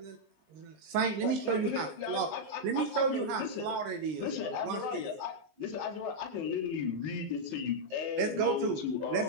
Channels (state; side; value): late; left; 20 ms